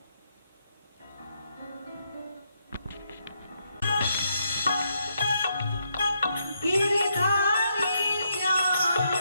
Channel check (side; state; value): both; inverted; correlation -0.78